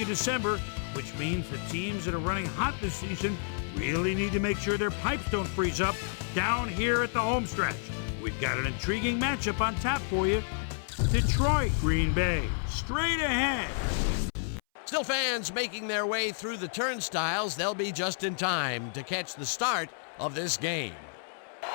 of December, which means the teams that are running hot this season really need to make sure their pipes don't freeze up down here at the home stretch. We've got an intriguing matchup on tap for you. Detroit, Green Bay, straight ahead. Still fans making their way through the turnstiles. They'll be just in time to catch the start of this game.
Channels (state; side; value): silent; right; 58 dB below the other